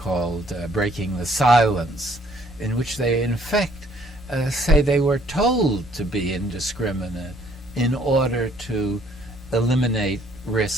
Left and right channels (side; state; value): both; normal; correlation 0.63